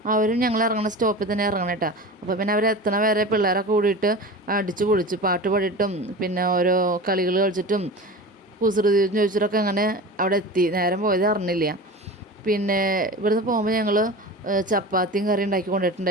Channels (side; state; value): both; normal; correlation 0.32